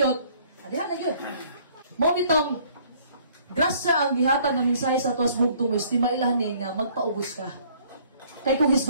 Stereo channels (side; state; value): both; inverted; correlation -0.59